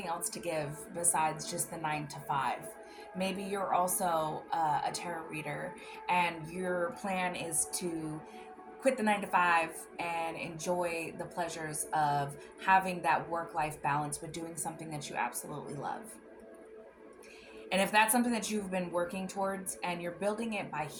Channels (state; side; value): identical; both; correlation 1.00